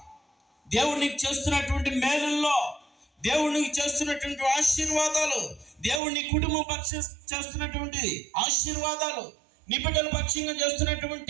దేవుడు నీకు చేస్తున్నటువంటి మేలుల్లో, దేవుడు నీకు చేస్తున్నటువంటి ఆశీర్వాదాలు, దేవుడు నీ కుటుంబం పక్షం చేస్తున్నటువంటి ఆశీర్వాదాలు, నీ బిడ్డల పక్షంగా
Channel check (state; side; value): drops out; left; at 6.0 s